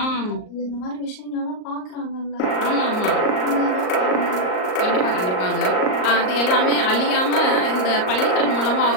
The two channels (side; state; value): right; late; 38 ms